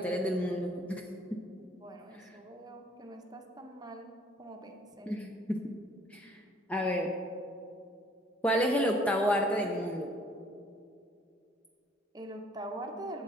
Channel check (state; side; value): normal; both; correlation 0.59